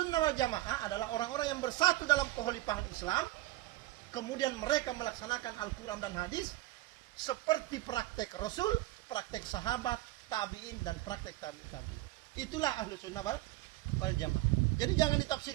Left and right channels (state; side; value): quieter; left; 17.5 dB